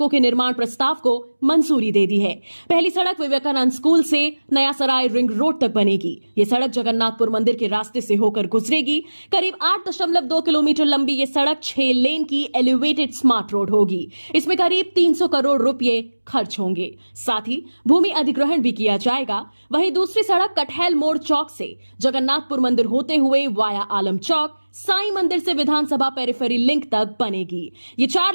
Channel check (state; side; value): inverted; both; correlation -1.00